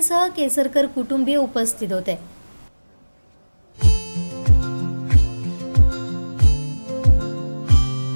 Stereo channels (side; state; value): both; inverted; correlation -1.00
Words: केसरकर कुटुंबीय उपस्थित होते।